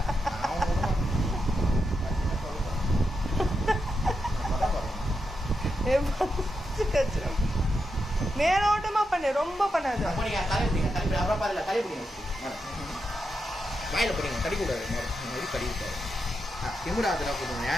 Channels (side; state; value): both; normal; correlation 0.85